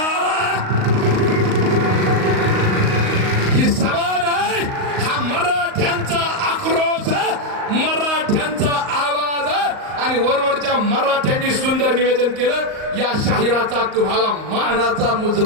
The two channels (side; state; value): left; late; 38 ms